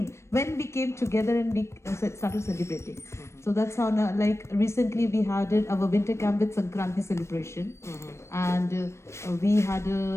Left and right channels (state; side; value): late; right; 0.13 ms